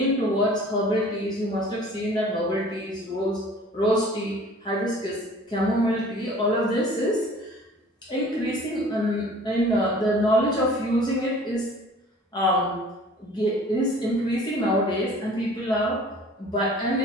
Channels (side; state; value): both; normal; correlation 0.48